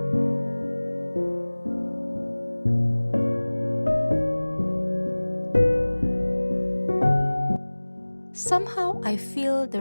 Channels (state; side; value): inverted; both; correlation -1.00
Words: Somehow I feel the